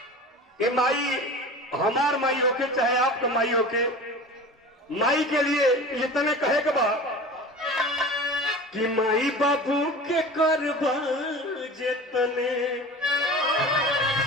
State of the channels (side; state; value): both; normal; correlation 0.36